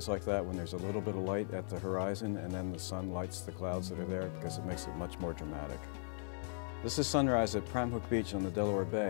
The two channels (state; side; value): silent; right; 52 dB below the other